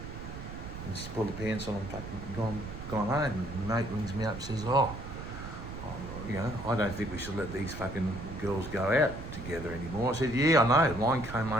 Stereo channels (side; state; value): right; noise; rumble, 10 dB below the sound